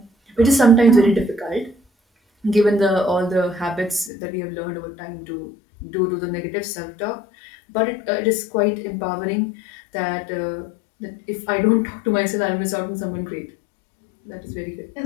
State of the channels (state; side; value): drops out; right; at 4.1 s